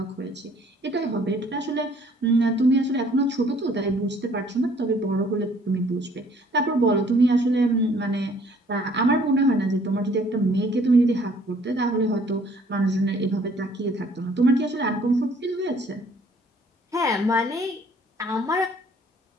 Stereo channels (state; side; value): normal; both; correlation 0.59